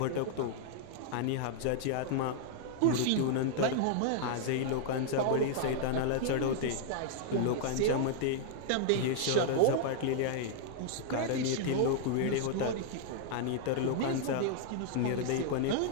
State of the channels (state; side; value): different; both; correlation -0.01